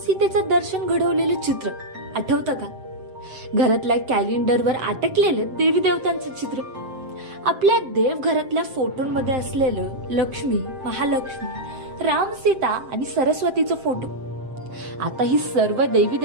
दर्शन घडवलेलं चित्र आठवतं का? घरातल्या कॅलेंडरवर अटकलेलं देवी देवतांचं चित्र, आपल्या देवघरातल्या फोटोंमध्ये असलेलं लक्ष्मी, महालक्ष्मी, राम, सीता आणि सरस्वतीचं फोटो. आता ही सर्व देवी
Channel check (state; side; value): late; left; 7.7 ms